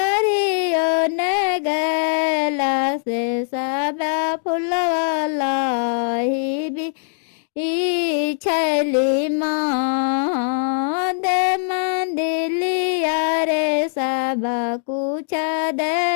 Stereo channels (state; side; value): silent; right; 65 dB below the other